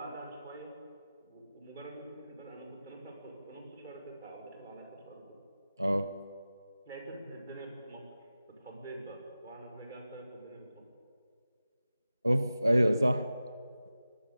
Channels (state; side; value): inverted; both; correlation -0.94